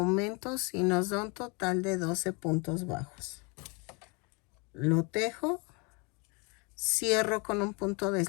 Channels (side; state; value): right; quieter; 30.8 dB